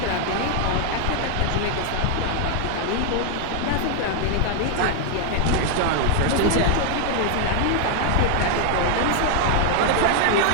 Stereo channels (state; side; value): different; both; correlation 0.00